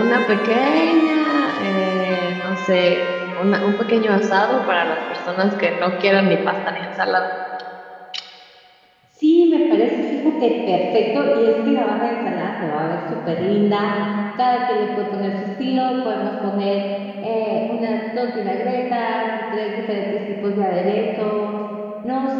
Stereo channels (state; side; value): identical; both; correlation 1.00